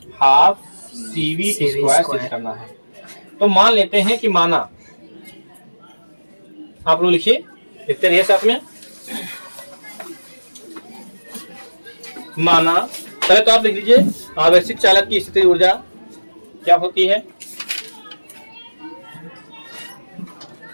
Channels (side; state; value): both; inverted; correlation -1.00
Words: हाफ CV स्क्वायर सिद्ध करना है। तो मान लेते हैं कि माना, आप लोग लिखिए, लिखते रहिए साथ में। माना, पहले तो आप लिख लीजिए आवेशित चालक की स्थितिज ऊर्जा क्या होती है।